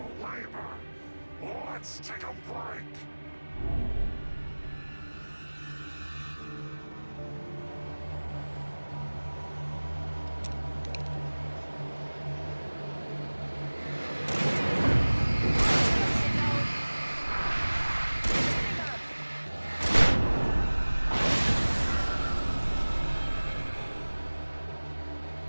Labor. Let's take a break.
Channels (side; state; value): both; inverted; correlation -1.00